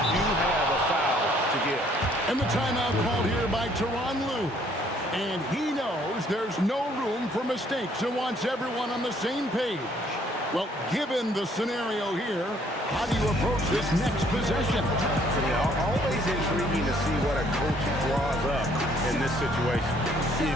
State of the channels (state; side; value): normal; both; correlation 0.63